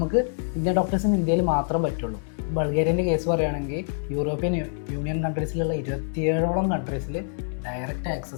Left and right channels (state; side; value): silent; right; digital silence